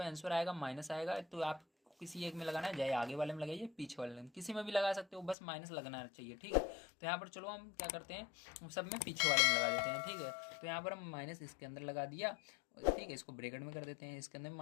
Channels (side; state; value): right; drops out; at 5.4 s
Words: आंसर आएगा माइनस आएगा। तो आप किसी एक में लगाना है, चाहे आगे वाले में लगाइए, पीछे वाले में, किसी में भी लगा सकते हो, बस माइनस लगना चाहिए। ठीक है, तो यहाँ पर चलो हम क्या करते हैं, सब में पीछे वाले में लगा देते हैं। ठीक है, तो यहाँ पर हम माइनस इसके अंदर लगा दिया। ठीक है, इसको ब्रैकेट में कर देते हैं, इसके अंदर भी